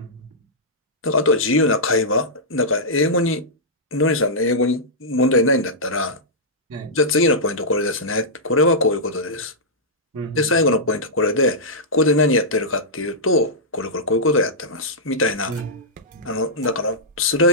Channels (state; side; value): normal; both; correlation -0.12